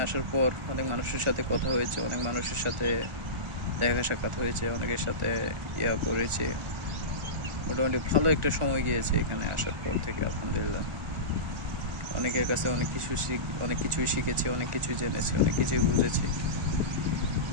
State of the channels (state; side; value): late; left; 1.4 ms